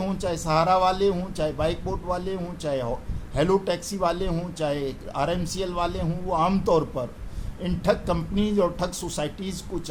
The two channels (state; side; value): identical; both; correlation 1.00